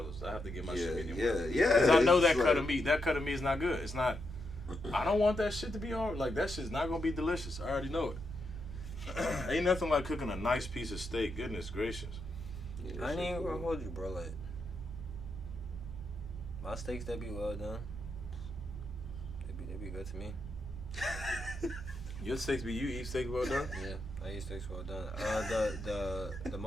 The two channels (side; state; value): both; normal; correlation 0.83